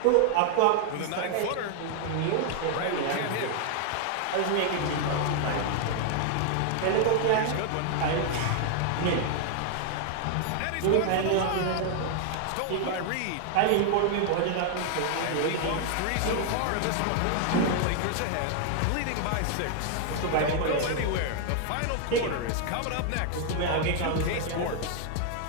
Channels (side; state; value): both; different; correlation 0.00